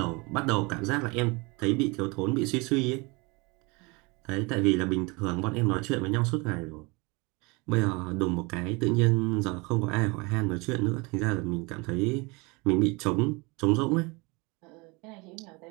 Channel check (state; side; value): quieter; left; 27.0 dB